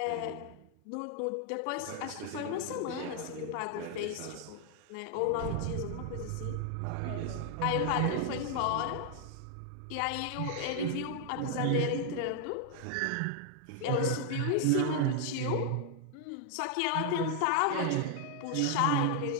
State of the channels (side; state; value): both; different; correlation 0.00